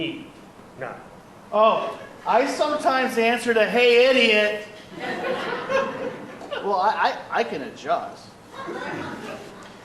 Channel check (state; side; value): identical; both; correlation 1.00